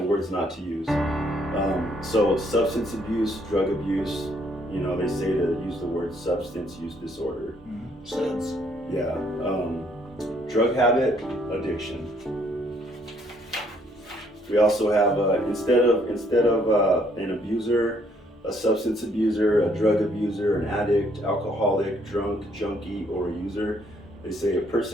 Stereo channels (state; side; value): normal; both; correlation 0.67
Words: words not to use. So substance abuse, drug abuse, you know, they say to use the word substance use disorder. Sense. Yeah. Drug habit, addiction. We also have instead of an abuser, a substance abuser, a drug abuser, an addict, alcoholic, drunk, junkie, or a user, they say a